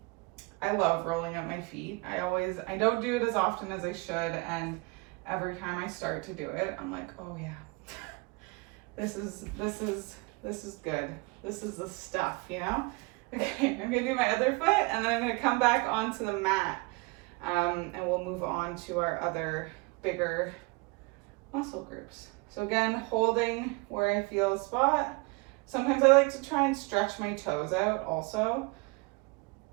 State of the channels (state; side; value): quieter; left; 27.0 dB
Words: I love rolling up my feet. I don't do it as often as I should, and every time I start to do it, I'm like, oh yeah, this is good. This is the stuff, you know? Okay, I'm gonna do my other foot, and then I'm gonna come back onto the mat, and we'll move on to our other bigger muscle groups. So again, holding where I feel a spot. Sometimes I like to try and stretch my toes out also,